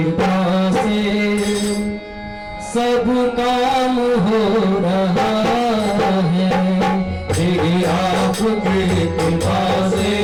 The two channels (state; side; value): identical; both; correlation 1.00